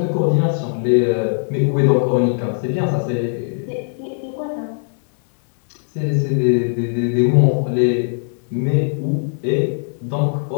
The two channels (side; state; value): right; silent; digital silence